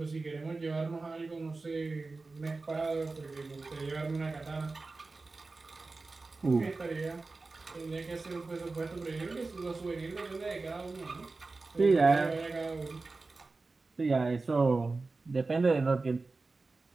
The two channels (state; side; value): quieter; left; 3.7 dB